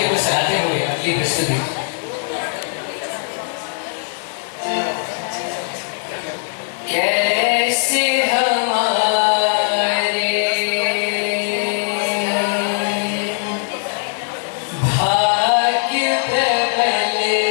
को सराहते हुए अगली प्रस्तुति कैसे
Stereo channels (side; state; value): right; silent; 63 dB below the other